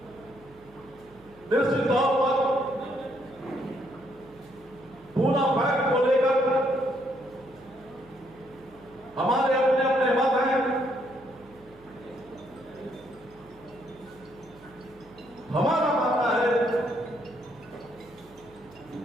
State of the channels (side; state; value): right; noise; hum, 26 dB below the sound